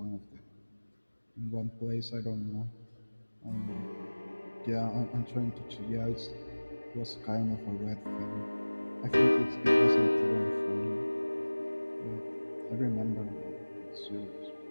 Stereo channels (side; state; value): both; inverted; correlation -1.00